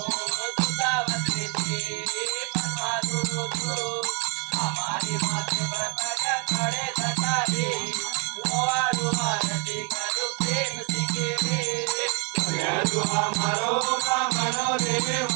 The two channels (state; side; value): quieter; left; 36.1 dB